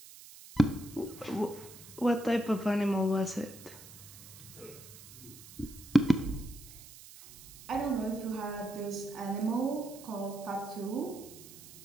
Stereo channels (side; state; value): right; noise; hiss, 17 dB below the sound